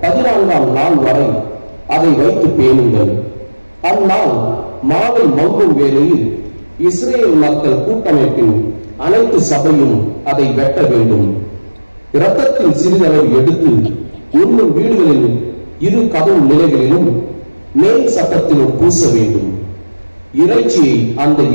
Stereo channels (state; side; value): inverted; both; correlation -1.00